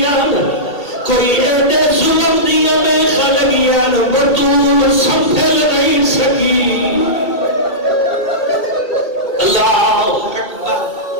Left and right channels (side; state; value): right; late; 2.3 ms